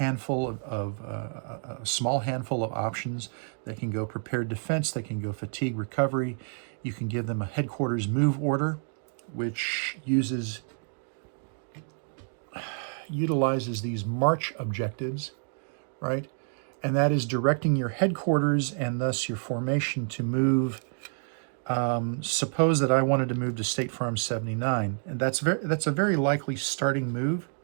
a small handful of options. They can go prepared defense, they can go fatigue recovery. You can give them a headquarters move order, which utilizes these march objectives, right? And that is directing your headquarters and thus your formation to move. Suppose that I wanted to move to State Farm 79, and that's a very likely starting move,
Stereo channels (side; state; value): left; silent; 59 dB below the other